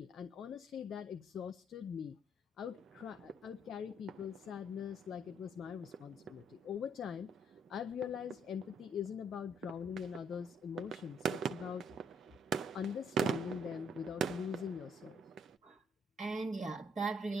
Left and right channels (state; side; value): normal; both; correlation 0.68